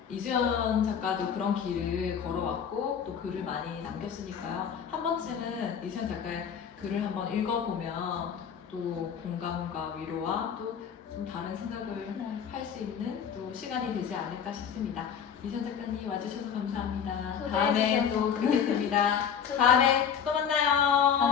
이수연 작가도 그런 길을 걸어왔고 또 글을 많이 남겼으니까요. 한 번쯤은 이수연 작가의 글을 한번 읽어보면 또 공감과 위로와 또 좀 다른 생각을 할 수 있는 또 시간이 되지 않을까 싶습니다. 이수연 작가님 와주셔서 감사합니다. 다음에 또 뵙겠습니다. 다음에 또 만나요.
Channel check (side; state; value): right; quieter; 7.7 dB